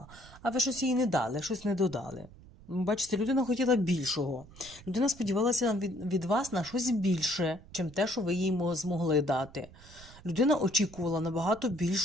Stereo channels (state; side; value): noise; right; rumble, 20 dB below the sound